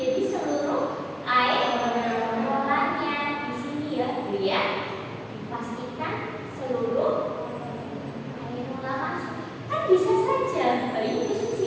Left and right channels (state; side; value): identical; both; correlation 1.00